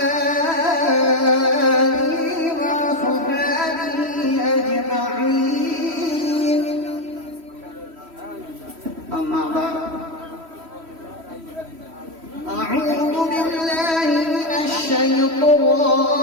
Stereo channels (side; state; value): left; late; 3.1 ms